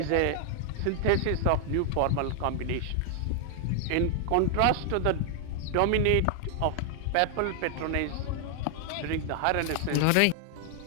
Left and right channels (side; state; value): both; different; correlation 0.00